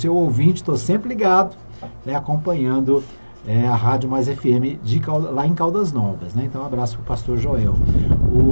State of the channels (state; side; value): inverted; both; correlation -1.00